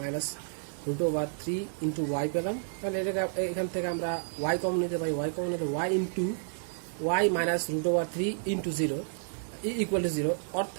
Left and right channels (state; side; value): silent; left; 57 dB below the other